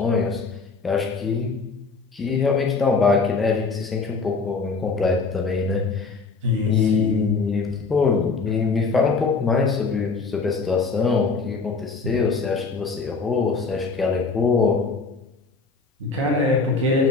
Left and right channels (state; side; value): quieter; right; 4.4 dB